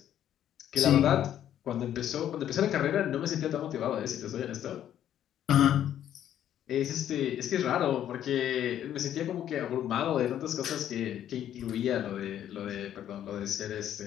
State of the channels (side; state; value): right; quieter; 10.8 dB